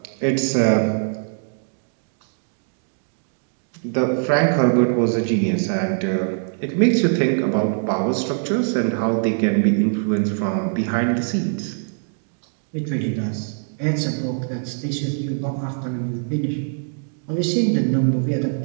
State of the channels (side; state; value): left; silent; digital silence